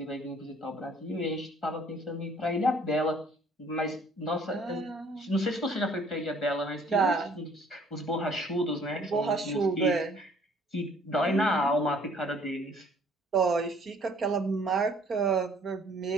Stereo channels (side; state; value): both; normal; correlation 0.58